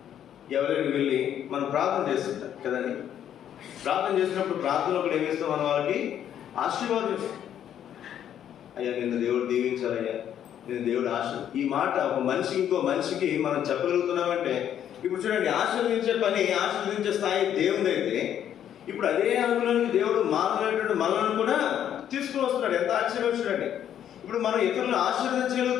ఎవరికి వెళ్ళి మనం ప్రార్థన చేస్తుంటాం కదండి. ప్రార్థన చేసినప్పుడు ప్రార్థనలో కూడా ఏమిస్తాం? మనం వాళ్ళకి ఆశీర్వాదం ఇస్తాం. అయ్యా నిన్ను దేవుడు దీవించాలయ్యా, నేను దేవుడు ఈ మాట ఒక మనిషికి ఇంకో మనిషికి మనం చెప్పగలుగుతున్నామంటే, ఇప్పుడు చూడండి, ఆశీర్వదించే పని, ఆశీర్వదించే స్థాయి దేవుడు అయితే ఇప్పుడు అదే అనుగుణానికి దేవుడు మానవులైనటువంటి మనలను కూడా తీసుకుని వస్తున్నాడు. ఎంత ఆశ్చర్యం చూడండి. ఇప్పుడు మనం ఇతరులను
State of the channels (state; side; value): quieter; right; 10.0 dB